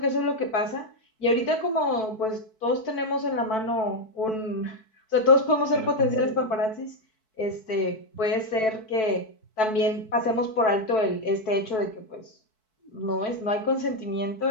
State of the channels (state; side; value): late; right; 4.6 ms